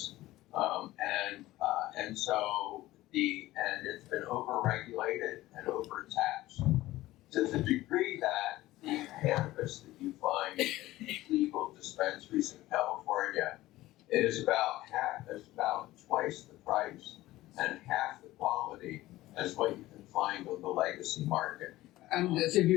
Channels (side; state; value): right; quieter; 16.8 dB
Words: and so it's been overregulated and overtaxed to the degree that the cannabis that you find in legal dispensaries in California is about twice the price and half the quality as what you can find on the legacy market. And so